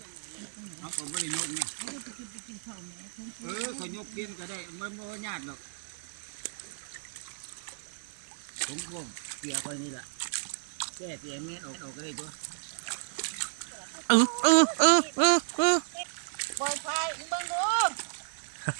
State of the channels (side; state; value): left; silent; 56 dB below the other